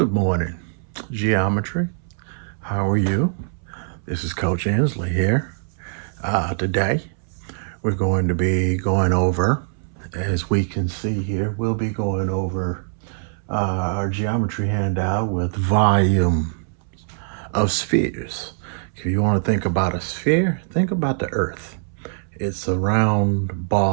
morning, Geometry. How are you? This is Coach Inslee here. Today, we're going to be going over, as we can see here, we'll be going over our geometry handout with volume of spheres. If you want to think about a sphere, think about the Earth. It's a round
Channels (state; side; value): silent; left; 64 dB below the other